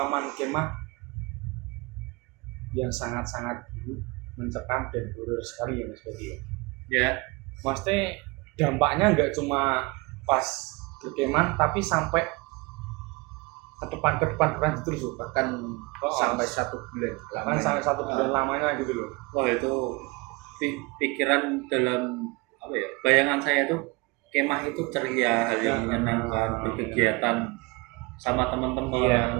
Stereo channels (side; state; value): left; quieter; 25.7 dB